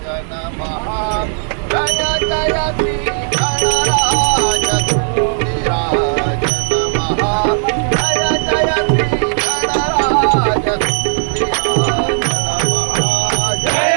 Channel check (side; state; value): left; silent; digital silence